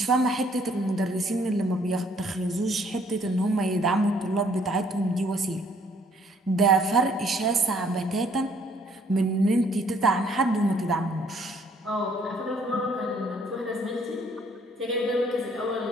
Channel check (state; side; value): normal; both; correlation 0.63